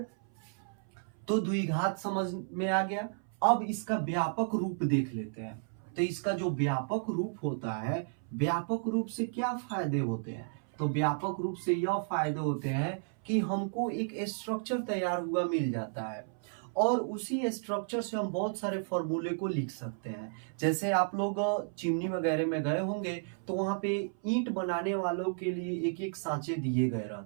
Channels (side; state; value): left; silent; 56 dB below the other